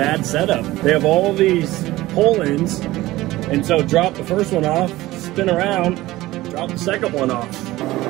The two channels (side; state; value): left; quieter; 17.6 dB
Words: setup. They have all these pull-ins, and so drop the first one off, spin around, drop the second one off.